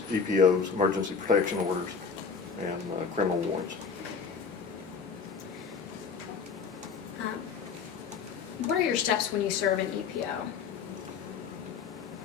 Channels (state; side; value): quieter; right; 5.7 dB